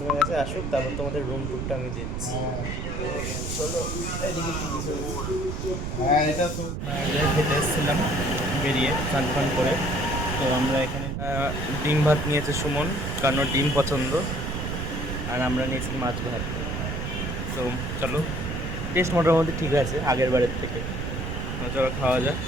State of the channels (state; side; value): noise; right; rumble, 4 dB below the sound